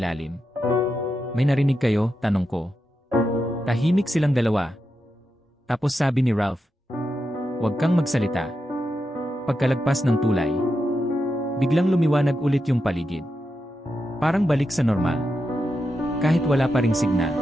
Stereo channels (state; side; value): normal; both; correlation 0.87